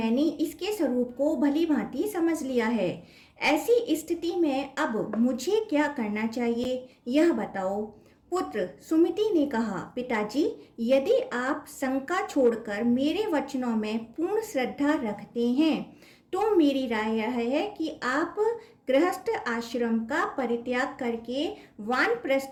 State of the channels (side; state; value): both; identical; correlation 1.00